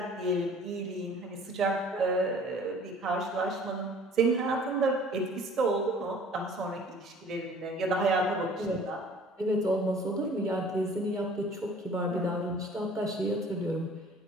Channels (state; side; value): normal; both; correlation 0.50